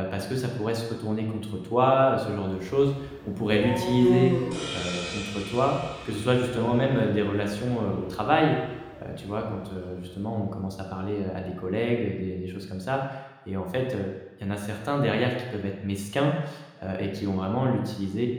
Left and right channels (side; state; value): both; identical; correlation 1.00